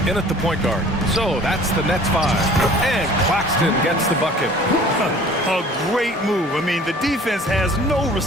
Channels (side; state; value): both; normal; correlation 0.48